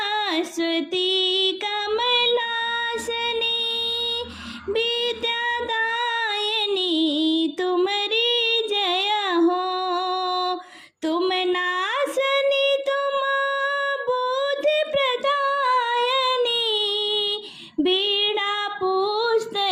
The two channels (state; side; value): identical; both; correlation 1.00